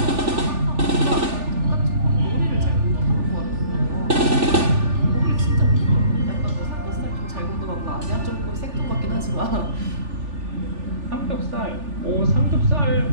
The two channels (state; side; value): late; left; 3.4 ms